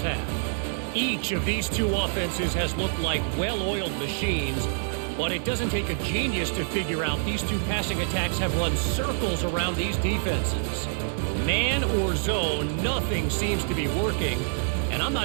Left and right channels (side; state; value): left; silent; 59 dB below the other